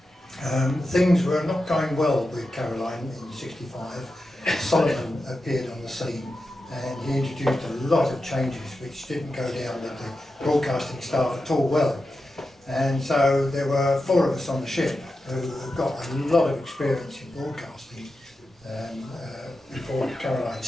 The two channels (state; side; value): normal; both; correlation 0.90